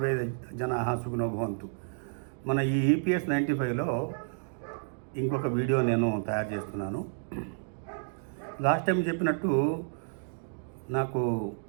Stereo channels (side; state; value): left; silent; digital silence